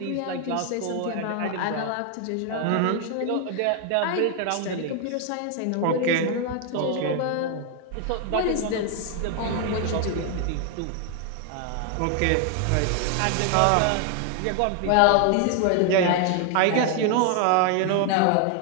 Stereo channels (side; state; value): both; different; correlation 0.00